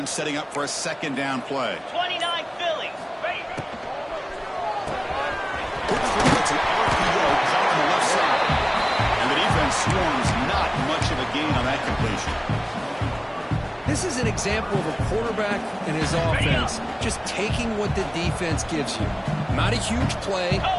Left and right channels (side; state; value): both; identical; correlation 1.00